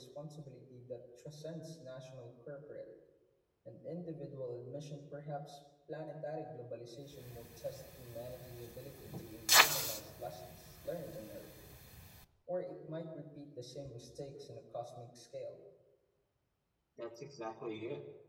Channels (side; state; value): both; identical; correlation 1.00